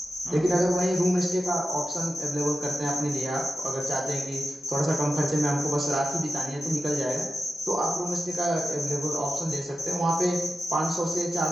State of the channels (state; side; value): normal; both; correlation 0.91